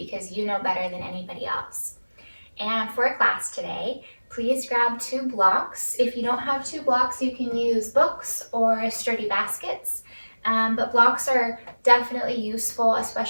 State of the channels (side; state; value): both; inverted; correlation -1.00